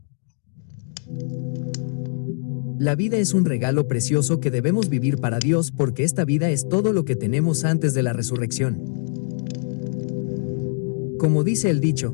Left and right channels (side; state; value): right; silent; digital silence